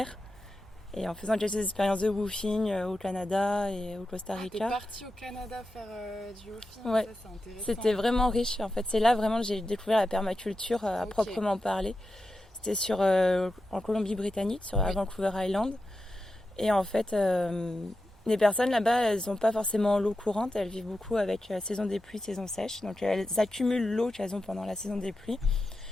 Et en faisant quelques expériences de woofing au Canada et au Costa Rica. T'es partie au Canada faire du woofing, ouais. Ça c'est intéressant. C'était vraiment riche. En fait, c'est là vraiment que j'ai découvert la permaculture à proprement parler. C'était en Colombie-Britannique, à Vancouver Island. Et en fait, Les personnes là-bas, elles n'ont pas forcément l'eau courante, elles vivent beaucoup avec la saison des pluies, saison sèche. Donc elles accumulent l'eau qu'elles ont pendant la saison des pluies.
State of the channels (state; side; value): normal; both; correlation 0.90